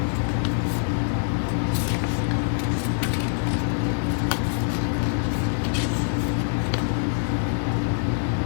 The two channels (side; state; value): right; silent; digital silence